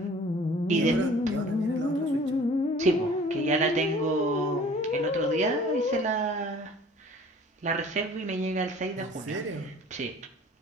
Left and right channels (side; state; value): both; normal; correlation 0.49